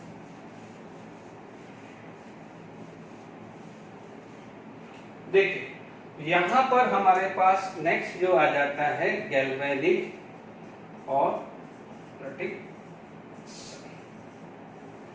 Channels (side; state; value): both; identical; correlation 1.00